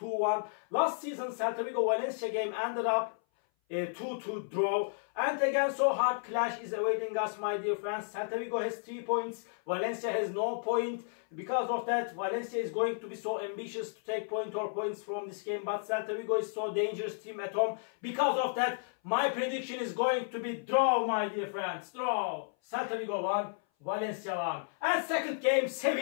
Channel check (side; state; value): right; silent; 56 dB below the other